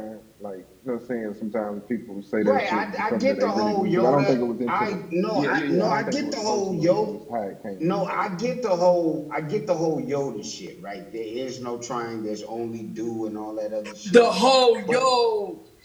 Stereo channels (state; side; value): identical; both; correlation 1.00